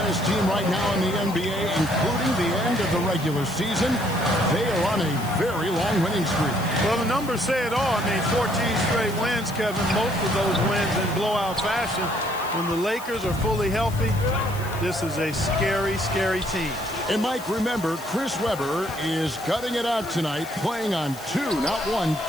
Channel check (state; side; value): noise; left; hiss, 16 dB below the sound